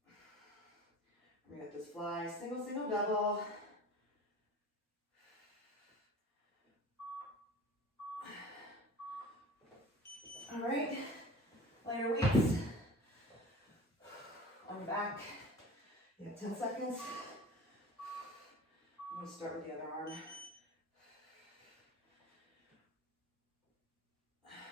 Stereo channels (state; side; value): normal; both; correlation 0.39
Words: We got this fly, single, double. All right, lighter weights on your back. You have 10 seconds. I'm going to start with the other arm.